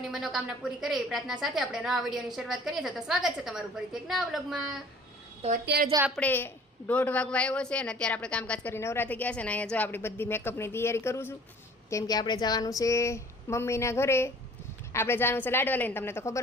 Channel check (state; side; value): normal; both; correlation 0.50